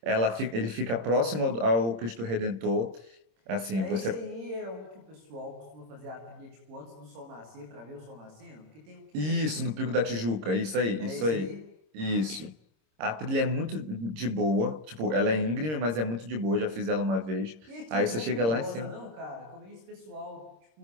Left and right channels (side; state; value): left; late; 26 ms